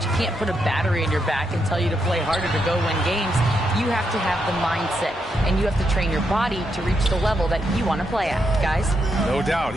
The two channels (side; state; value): both; normal; correlation 0.81